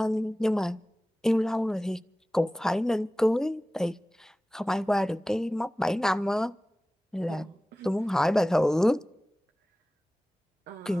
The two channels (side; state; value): both; normal; correlation 0.98